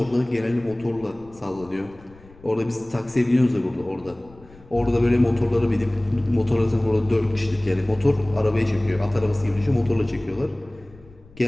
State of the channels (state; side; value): noise; left; rumble, 24 dB below the sound